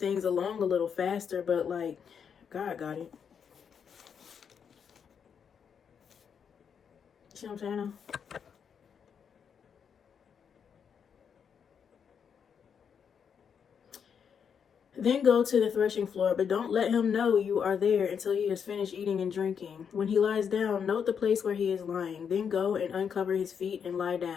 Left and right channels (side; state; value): right; quieter; 7.2 dB